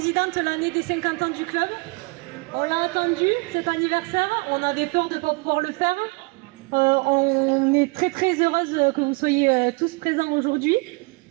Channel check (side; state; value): left; quieter; 29.0 dB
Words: l'année des 50 ans du club. On l'a attendu, cet anniversaire, on avait peur de ne pas pouvoir le faire. On est très heureuse que vous soyez tous présents aujourd'hui.